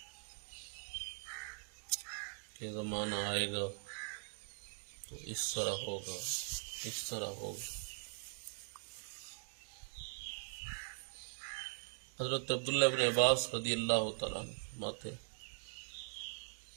کہ زمانہ آئے گا تو اس طرح ہوگا، اس طرح ہوگا۔ حضرت عبداللہ بن عباس رضی اللہ تعالیٰ عنہ فرماتے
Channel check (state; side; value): silent; left; digital silence